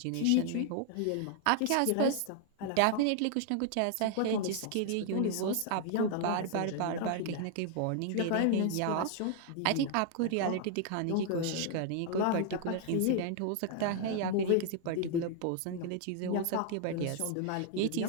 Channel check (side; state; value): both; different; correlation 0.00